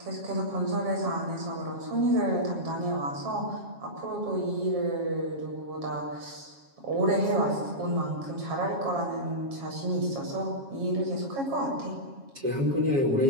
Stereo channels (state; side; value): late; left; 7.3 ms